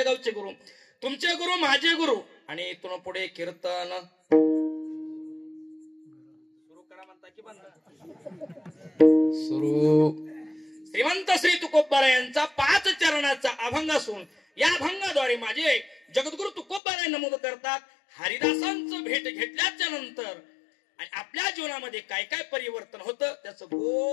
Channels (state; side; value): drops out; right; at 16.8 s